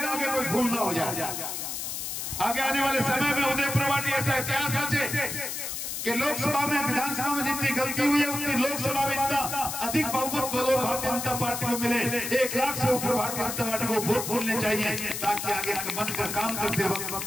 आगे कोई भूल ना हो जाए। आगे आने वाले समय में उदय प्रवाटी ऐसा इतिहास रचे कि लोकसभा में विधानसभा में जितनी गलती हुई है उतनी लोकसभा में इतना अधिक बहुमत बोलो भारतीय जनता पार्टी को मिले। 1 लाख से ऊपर भारतीय जनता पार्टी को वोट बोलने चाहिए ताकि आगे मन कर काम करते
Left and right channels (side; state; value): left; noise; hiss, 5 dB below the sound